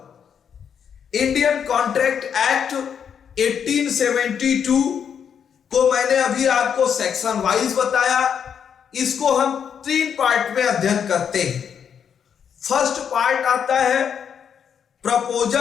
इंडियन कॉन्ट्रैक्ट एक्ट 1872 को मैंने अभी आपको सेक्शन वाइज बताया। इसको हम 3 पार्ट में अध्ययन करते हैं। फर्स्ट पार्ट आता है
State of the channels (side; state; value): right; quieter; 7.7 dB